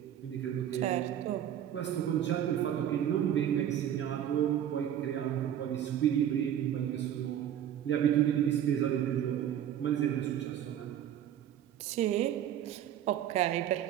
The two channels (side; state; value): left; quieter; 10.5 dB